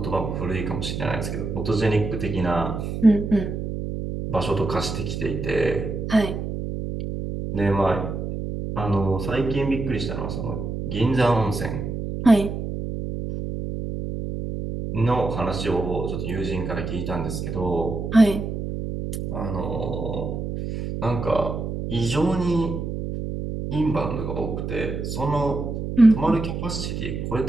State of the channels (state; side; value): noise; right; hum, 4 dB below the sound